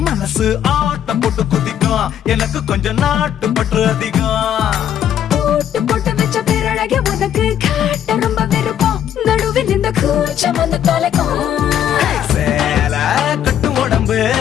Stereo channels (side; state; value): right; quieter; 10.0 dB